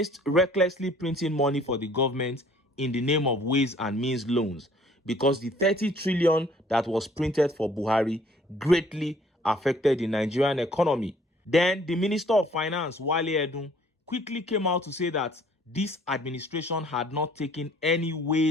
recklessly printing money for the government in the name of Ways and Means loans, because the 30 trillion that was printed for Buhari greatly affected the Nigerian economy. Then the Minister of Finance, Wale Edun, quickly came out to say that this administration had not taken any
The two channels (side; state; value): both; normal; correlation 0.57